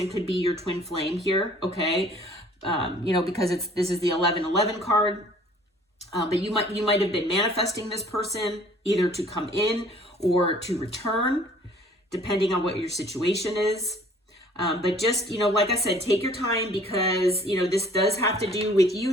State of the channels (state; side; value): normal; both; correlation 0.54